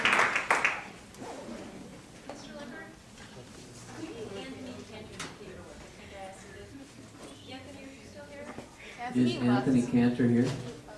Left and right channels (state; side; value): identical; both; correlation 1.00